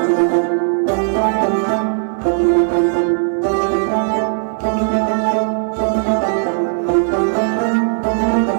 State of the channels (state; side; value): silent; left; digital silence